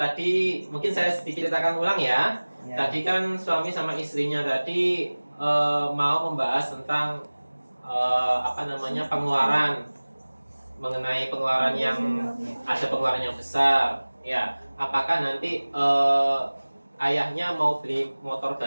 mungkin saya sedikit ceritakan ulang ya. Tadi kan suami sama istrinya tadi mau membahas tentang pengeluaran, mengenai pengeluaran yang ada pengeluaran yang besar. Ya, apakah nanti ayahnya mau beli motor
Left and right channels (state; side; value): inverted; both; correlation -1.00